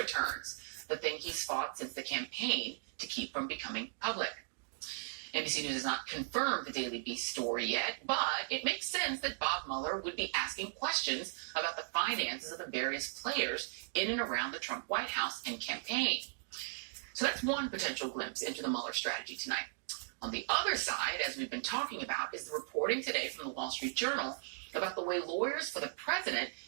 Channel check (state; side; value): silent; left; digital silence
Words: the thing he's fought since the campaign to keep from becoming public. NBC News has not confirmed the Daily Beast story yet, but it makes sense that Bob Mueller would be asking questions about the finances of the various players in and around the Trump White House and campaign. So that's one potential glimpse into the Mueller strategy tonight. On the other side, as we've been talking about, is the reporting today from the Wall Street Journal about the way lawyers for the president